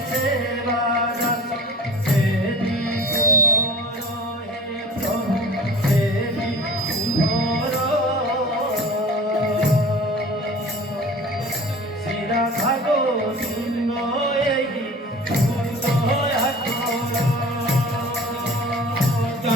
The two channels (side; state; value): both; normal; correlation 0.41